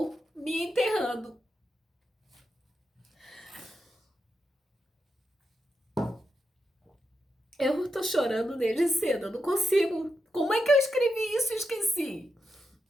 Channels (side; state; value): both; normal; correlation 0.86